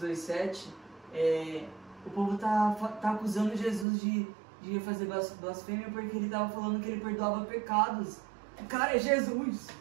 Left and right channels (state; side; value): drops out; left; at 3.9 s